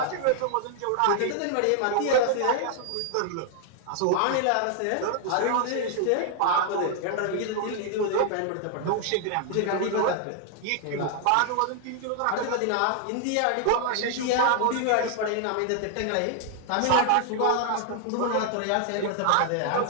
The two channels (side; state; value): both; different; correlation 0.00